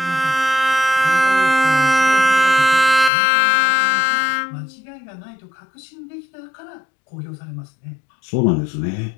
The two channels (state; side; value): drops out; right; at 3.1 s